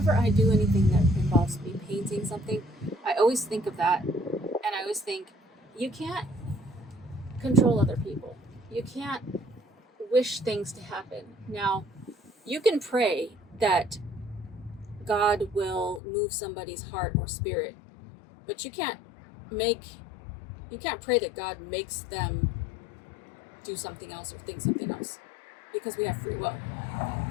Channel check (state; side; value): drops out; right; at 16.0 s